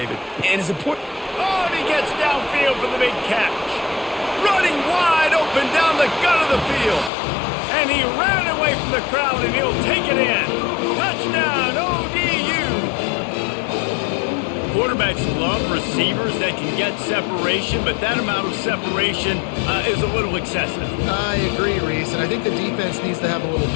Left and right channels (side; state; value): right; drops out; at 7.1 s